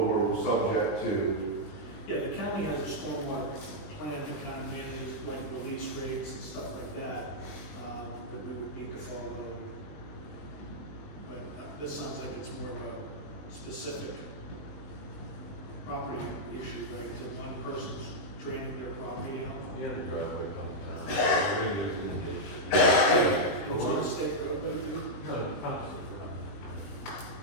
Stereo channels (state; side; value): late; right; 20 ms